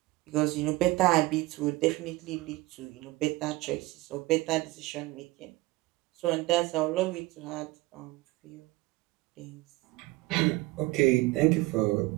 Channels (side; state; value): left; quieter; 20.3 dB